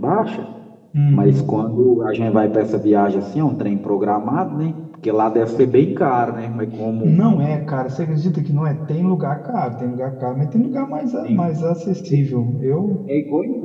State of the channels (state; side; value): identical; both; correlation 1.00